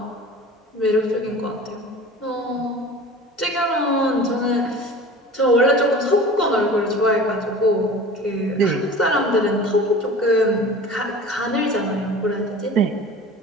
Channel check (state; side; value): normal; both; correlation 0.39